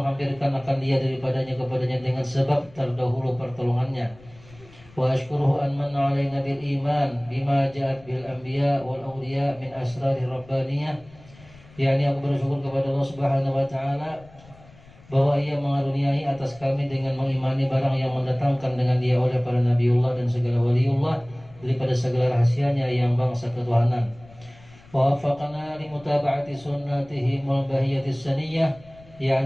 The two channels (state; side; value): noise; left; rumble, 24 dB below the sound